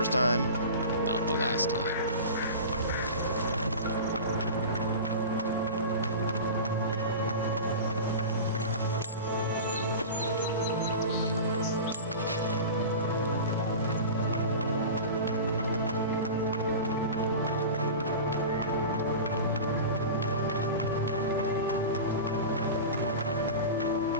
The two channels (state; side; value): inverted; both; correlation -0.31